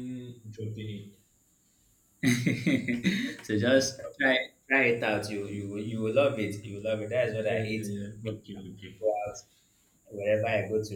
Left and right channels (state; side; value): identical; both; correlation 1.00